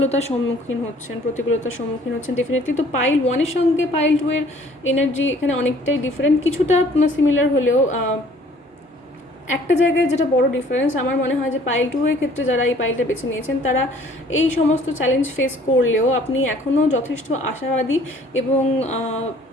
সম্মুখীন হচ্ছেন ডেফিনেটলি। তো পাইল 1-এর সঙ্গে পাইল 2-এর এনার্জি এখানে অনেকটাই ডিফারেন্ট, কিছুটা সিমিলার হলেও একটা জায়গায় যেটা বড় ডিফারেন্স আমার মনে হয় যে পাইল 2-এর ক্ষেত্রে যারা এই পাইলটা বেছে নিয়েছেন তারা এই সমস্ত চ্যালেঞ্জ ফেস করলেও আপনি এখনও যথেষ্ট আশাবাদী এবং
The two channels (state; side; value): normal; both; correlation 0.56